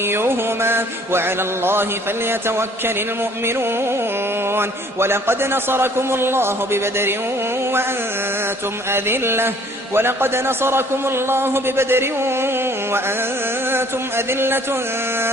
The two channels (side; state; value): both; normal; correlation 0.57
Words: وعلى الله فليتوكل المؤمنون. ولقد نصركم الله ببدر وأنتم أذلة